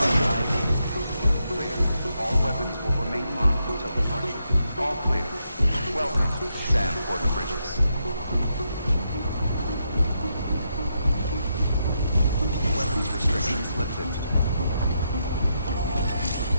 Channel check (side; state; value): both; inverted; correlation -0.82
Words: ID. Clear. All weapons will remain locked until departure. All clear. Welcome, Sam Porter Bridges. Weapons restrictions lifted.